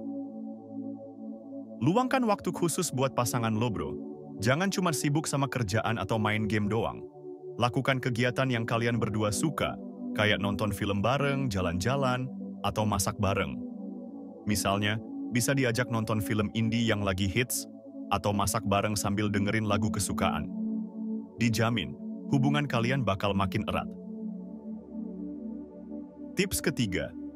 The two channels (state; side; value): identical; both; correlation 1.00